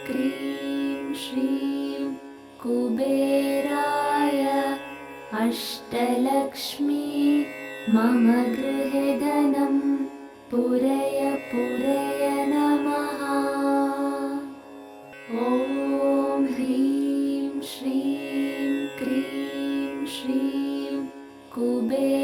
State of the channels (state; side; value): identical; both; correlation 1.00